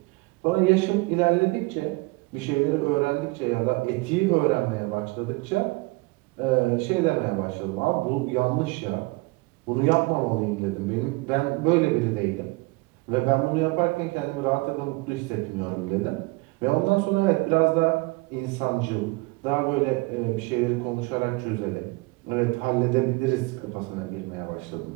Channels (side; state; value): left; quieter; 25.1 dB